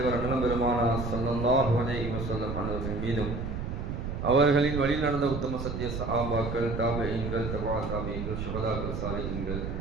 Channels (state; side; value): noise; right; rumble, 4 dB below the sound